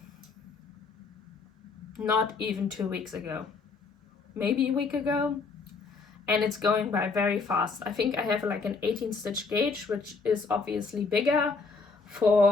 not even 2 weeks ago, maybe a week ago, and it's going by very fast. I think I have like an 18 stitch gauge, which is obviously bigger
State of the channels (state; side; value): quieter; right; 4.4 dB